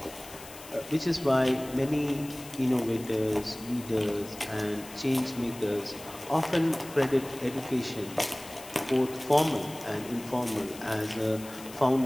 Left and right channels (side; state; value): left; noise; hiss, 16 dB below the sound